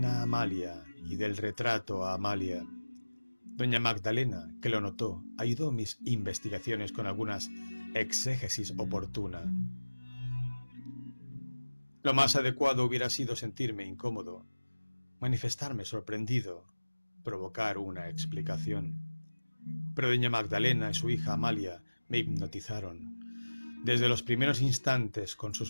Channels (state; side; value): inverted; both; correlation -1.00